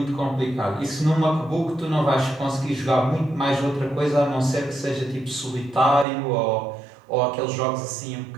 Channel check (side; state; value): left; drops out; at 6.1 s